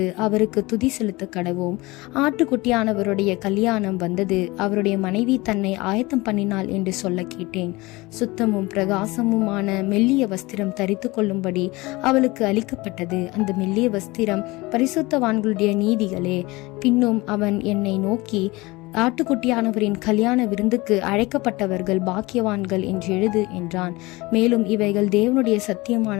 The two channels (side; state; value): right; quieter; 22.2 dB